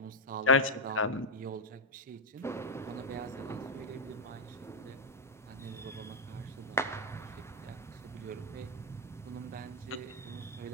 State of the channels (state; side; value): normal; both; correlation -0.01